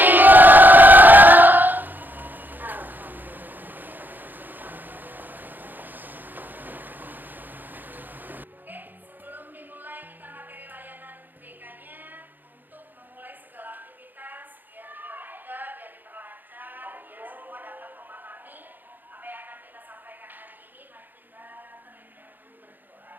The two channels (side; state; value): left; late; 0.088 ms